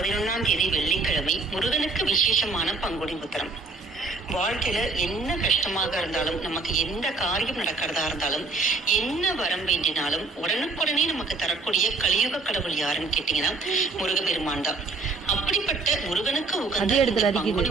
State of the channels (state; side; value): quieter; left; 3.8 dB